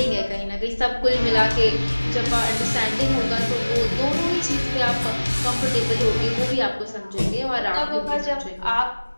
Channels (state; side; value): inverted; both; correlation -1.00